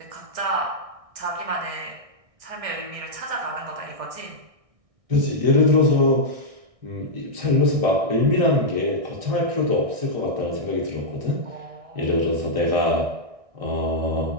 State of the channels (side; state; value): left; late; 1.6 ms